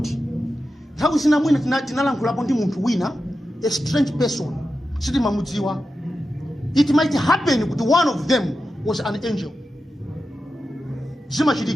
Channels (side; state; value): both; normal; correlation 0.91